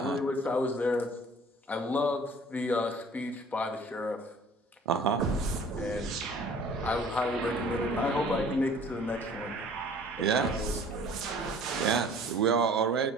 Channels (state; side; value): normal; both; correlation 0.50